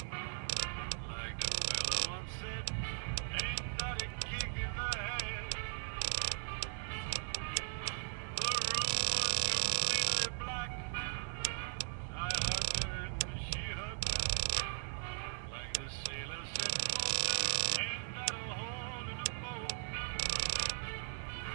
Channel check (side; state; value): left; silent; digital silence